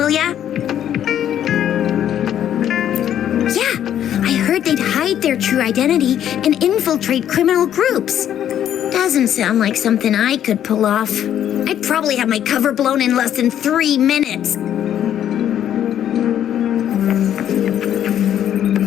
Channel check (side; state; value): right; quieter; 10.4 dB